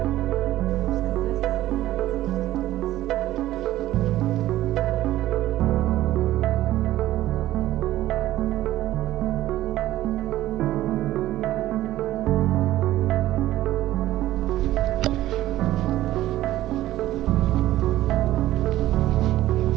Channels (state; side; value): quieter; left; 14.8 dB